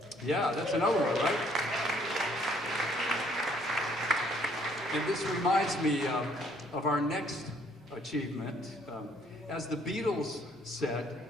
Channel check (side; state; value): both; normal; correlation 0.64